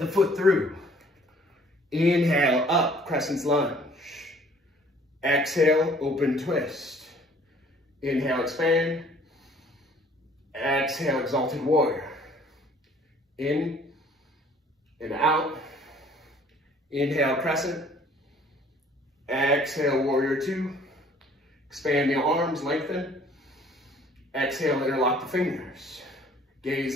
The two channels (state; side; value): normal; both; correlation 0.56